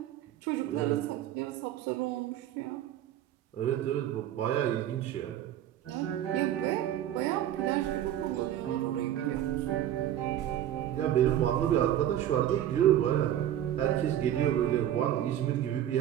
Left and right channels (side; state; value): left; quieter; 11.6 dB